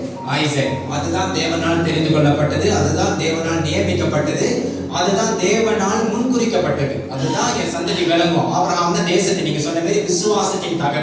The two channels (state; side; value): identical; both; correlation 1.00